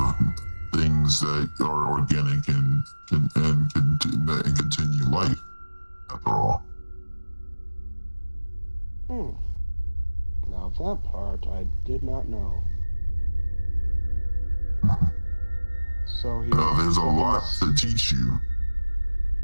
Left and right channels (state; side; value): inverted; both; correlation -1.00